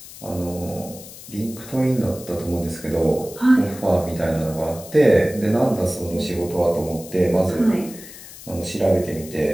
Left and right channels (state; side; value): noise; left; hiss, 16 dB below the sound